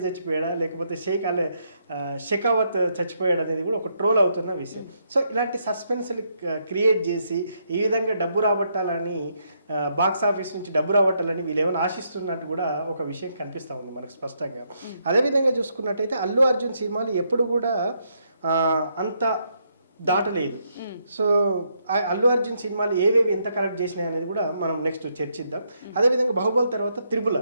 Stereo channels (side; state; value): both; inverted; correlation -0.76